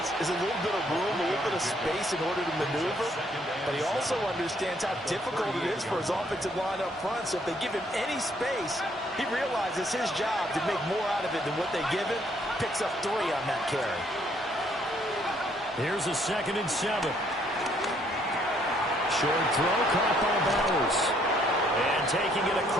is a little bit of room, a little bit of space in order to maneuver. But he also understands how difficult it is for his offensive line up front. So if they give him any space, he realizes his job to make more out of it than what they give him. Picks up 3 on that carry. Here's a 2nd and 7. Short throw caught by Bowers. And taking it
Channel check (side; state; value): both; normal; correlation 0.67